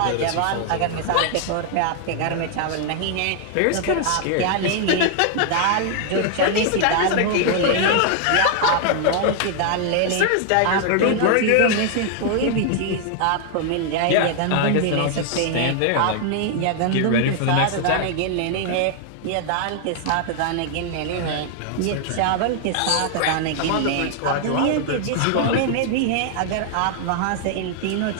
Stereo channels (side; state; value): both; different; correlation 0.00